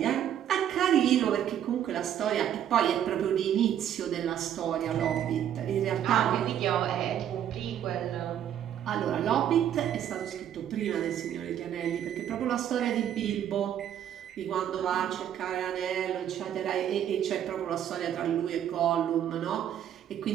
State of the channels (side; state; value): left; quieter; 10.2 dB